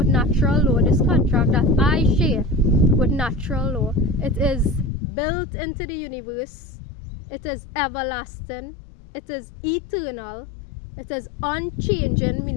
natural law, this contract that I share with natural law, it is built into the universe. It is everlasting. It is eternal. It is unchanging,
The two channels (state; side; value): drops out; right; at 4.9 s